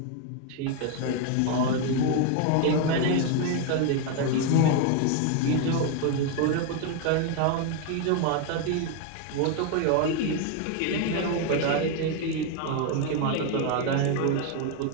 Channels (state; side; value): different; both; correlation 0.01